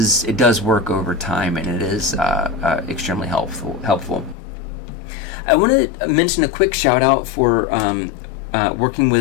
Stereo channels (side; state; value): right; drops out; at 4.4 s